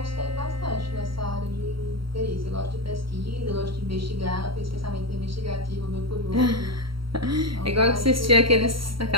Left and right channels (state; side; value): late; left; 0.74 ms